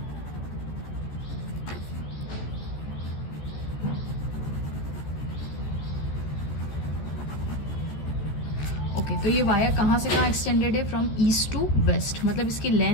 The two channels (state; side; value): late; right; 14 ms